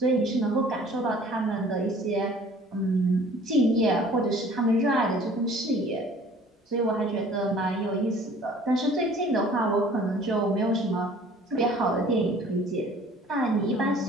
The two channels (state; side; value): normal; both; correlation 0.51